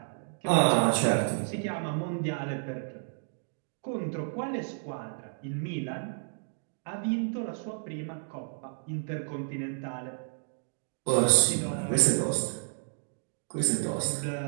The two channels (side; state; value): left; silent; digital silence